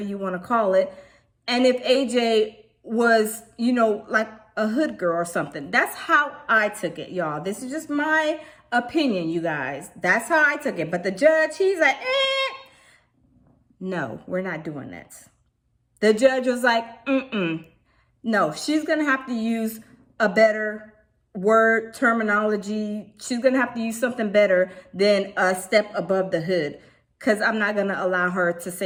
you want to call it. And if AJ was, like a hood girl or something. That's how I took it, y'all. This is just my opinion, you guys. That's how I took it. But the judge, he's like, no, we're not doing that. The judge was like, no, she's going to have to use a better word terminology. She's going to have to use something better than a step above the hood, because I'm not going to allow her to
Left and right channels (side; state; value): both; identical; correlation 1.00